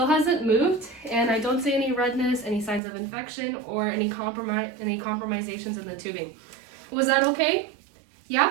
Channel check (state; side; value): drops out; left; at 2.8 s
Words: hasn't moved, and I don't see any redness, any signs of infection, or any compromisations in the tubing. Was that okay? Yeah?